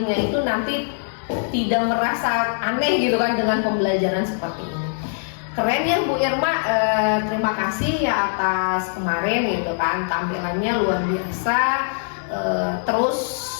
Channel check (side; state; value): right; silent; digital silence